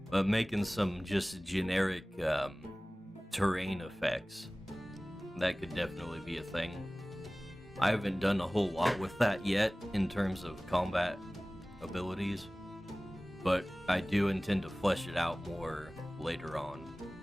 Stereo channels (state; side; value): normal; both; correlation 0.98